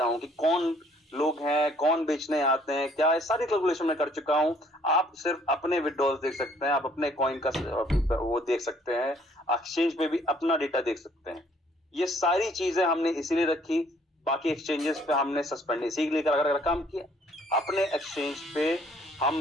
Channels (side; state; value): both; normal; correlation 0.61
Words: हूँ कि कौन लोग हैं, कौन बेचने आते हैं, क्या है, सारी कैलकुलेशन मैं कर चुका हूँ। आप सिर्फ अपने विड्रॉल देख सकते हैं, आप अपने कॉइन का वो देख सकते हैं, एक्सचेंज पे भी अपना डेटा देख सकते हैं। ये सारी चीजें हमने इसीलिए रखी, बाकी एक्सचेंजेस पे हमने सस्पेंड इसीलिए अगर काम किया। अपने एक्सचेंज पे